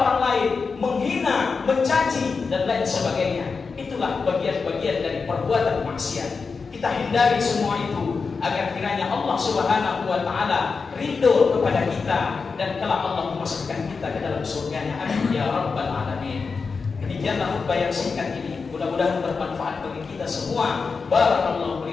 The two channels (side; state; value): right; quieter; 4.9 dB